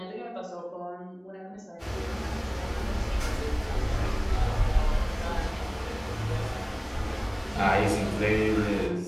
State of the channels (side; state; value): both; identical; correlation 1.00